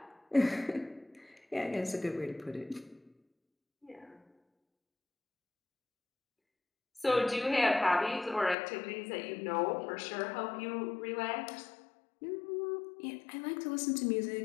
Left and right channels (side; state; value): right; drops out; at 8.6 s